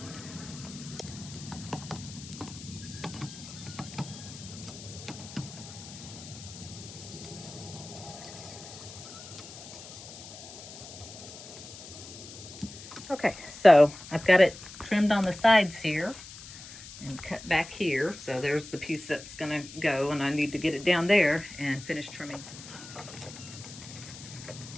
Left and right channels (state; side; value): noise; left; hiss, 14 dB below the sound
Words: Okay, so I've got it trimmed on the sides here and cut back here. So there's the piece that's gonna go, and I need to get it down there and finish trimming.